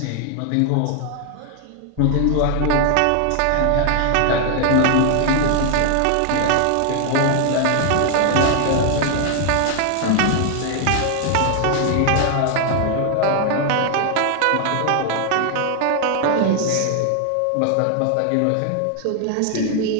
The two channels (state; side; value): different; both; correlation 0.00